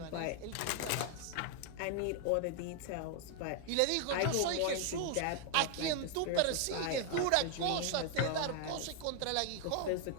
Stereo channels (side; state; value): both; different; correlation 0.00